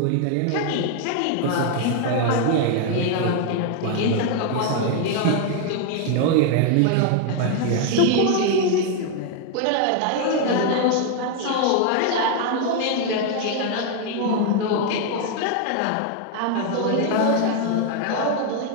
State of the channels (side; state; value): both; different; correlation 0.01